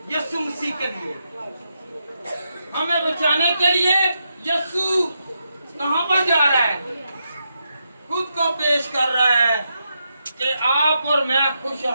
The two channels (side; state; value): both; inverted; correlation -0.83